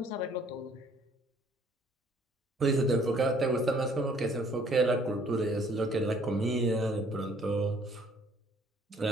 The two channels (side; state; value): both; normal; correlation 0.60